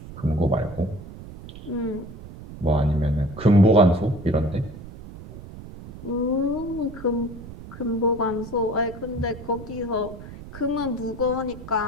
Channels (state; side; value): noise; right; rumble, 14 dB below the sound